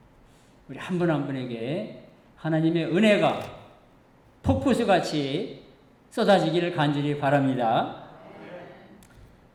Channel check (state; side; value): identical; both; correlation 1.00